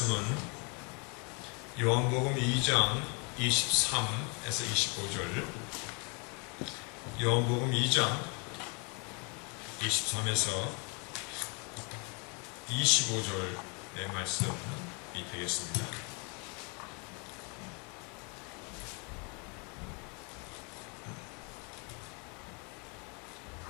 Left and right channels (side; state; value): right; quieter; 34.0 dB